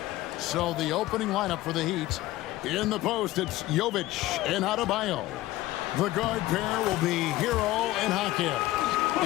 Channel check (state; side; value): quieter; right; 16.8 dB